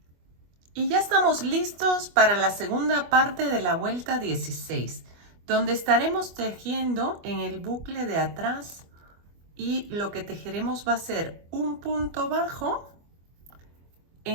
Y ya estamos listos para la segunda parte de la vuelta 16, donde estaremos tejiendo en el bucle de atrás y lo que tejeremos va a ser un punto bajo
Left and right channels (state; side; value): late; left; 25 ms